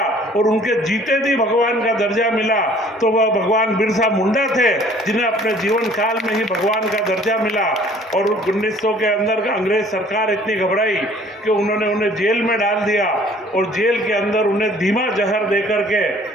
और उनके जीते जी भगवान का दर्जा मिला तो वह भगवान बिरसा मुंडा थे, जिन्हें अपने जीवन काल में ही भगवान का दर्जा मिला। और 1900 के अंदर अंग्रेज सरकार इतनी घबराई कि उन्होंने उन्हें जेल में डाल दिया और जेल के अंदर उन्हें धीमा जहर दे करके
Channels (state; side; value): normal; both; correlation 0.55